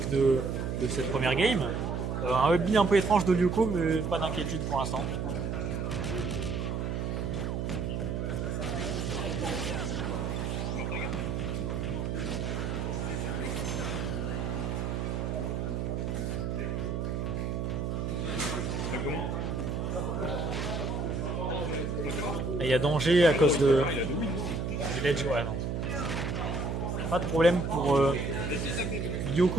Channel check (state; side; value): noise; right; hum, 1 dB below the sound